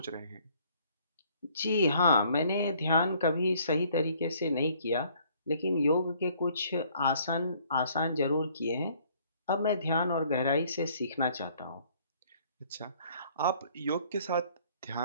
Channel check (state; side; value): inverted; both; correlation -0.60